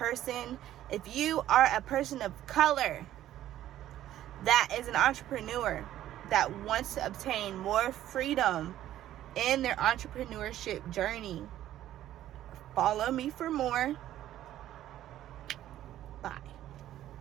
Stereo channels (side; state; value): left; quieter; 12.8 dB